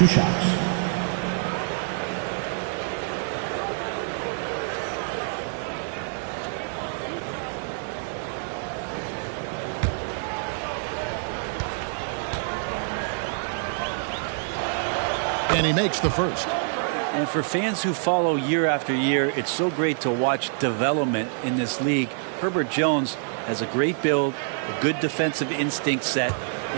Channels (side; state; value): left; silent; 61 dB below the other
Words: shots. And he makes the first. And for fans who follow year after year, it's so great to watch development in this league. Herbert Jones has a great build, a good defensive instinct set,